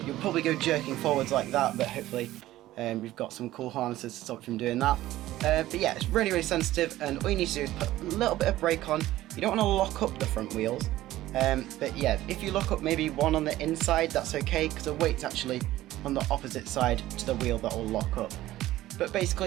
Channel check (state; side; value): quieter; left; 15.3 dB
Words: You'll probably go jerking forwards like that, but hopefully we've got some cool harnesses to stop you from doing that. But yeah, it's really sensitive, and all you need to do is put a little bit of brake on. You don't want to lock up the front wheels. But yeah, if you lock up maybe one on the inside, that's okay, because the weight's actually on the opposite side to the wheel that will lock up. But